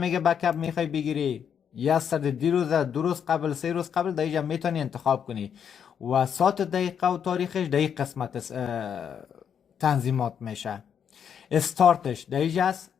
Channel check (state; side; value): quieter; right; 7.9 dB